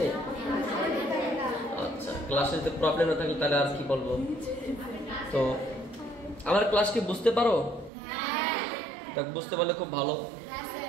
আচ্ছা, ক্লাসে যদি প্রবলেম না থাকে তাহলে আর কি বলবো। তো আমার ক্লাস কি বুঝতে পারো? তা বুঝতে পারলে খুব ভালো,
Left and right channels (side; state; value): left; drops out; at 7.9 s